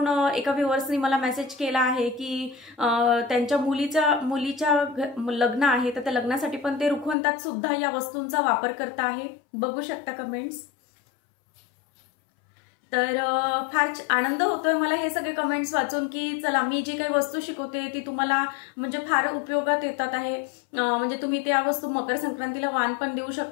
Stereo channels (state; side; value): drops out; right; at 7.2 s